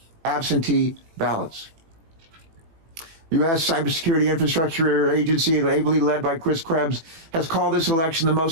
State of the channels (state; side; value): late; left; 18 ms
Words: absentee ballots. U.S. Cybersecurity Infrastructure Agency, ably led by Chris Krebs, has called this election the